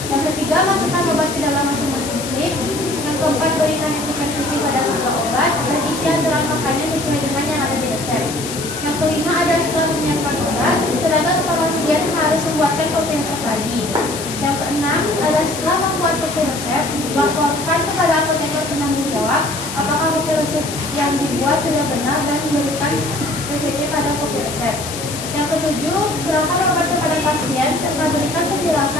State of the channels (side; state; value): left; noise; hiss, 8 dB below the sound